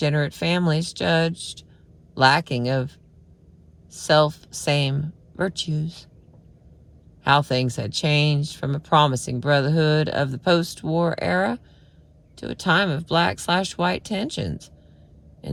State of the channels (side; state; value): both; identical; correlation 1.00